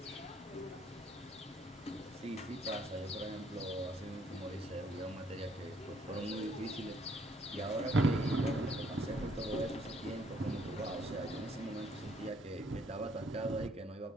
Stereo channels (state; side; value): normal; both; correlation 0.66